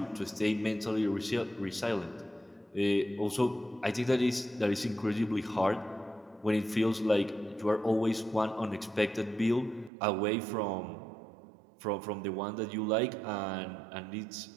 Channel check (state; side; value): drops out; left; at 9.9 s